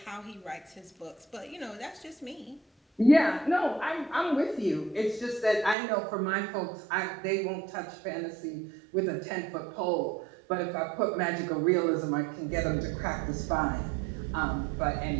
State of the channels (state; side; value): drops out; left; at 5.8 s